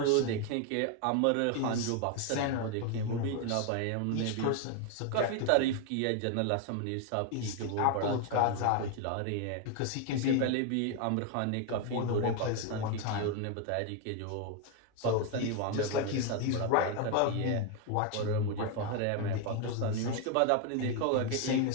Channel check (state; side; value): different; both; correlation 0.01